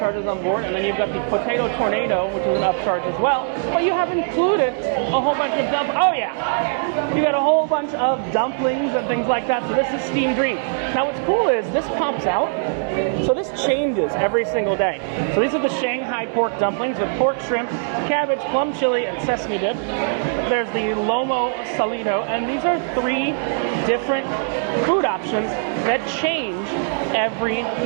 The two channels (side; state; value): left; silent; digital silence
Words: on board, and then you've got the Potato Tornado, which is an upcharge as well. But you have included a whole bunch of you got a whole bunch of dumplings and things like that. So this is Steamed Dream. Now what's cool is this pops out. So this changes every single day. So these are the Shanghai pork dumplings with pork, shrimp, cabbage, plum chili, and sesame dip. There's the Lomo Salido, and these are 3 different food options that change every